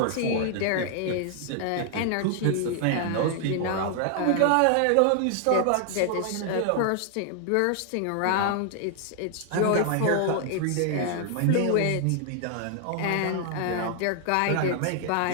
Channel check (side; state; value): both; different; correlation 0.00